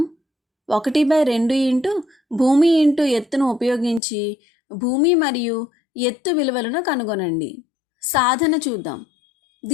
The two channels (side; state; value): right; drops out; at 4.0 s